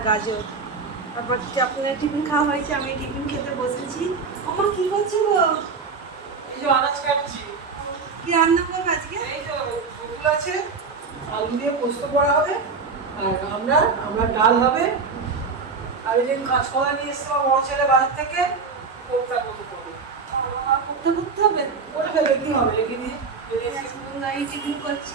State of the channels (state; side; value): quieter; left; 4.8 dB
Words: গাজর। তারপর আপনার টিফিন খাওয়া হয়েছে, আমি টিফিন খেতে বসেছি। আমার কি করছো গো? এই যে আনাজ কাটছি। কি রান্না করবে আজকে? এই তো ফুল আছে, আলু দিয়ে পোস্ত করা হবে, আর আমরা ডাল হবে, আর এই যে কাঁচকলা নিয়ে এসছে আমার বড় ছেলে বাজার থেকে, কোপ্তা মতো করবে। করতে হবে? করে ফেলে কি হবে, রেখে দিয়ে এই টিফিন